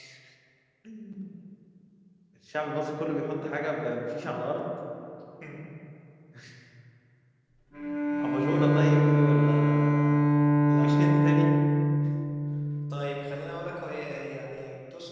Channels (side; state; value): both; identical; correlation 1.00